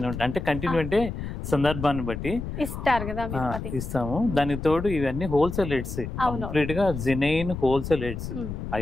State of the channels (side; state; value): left; noise; rumble, 7 dB below the sound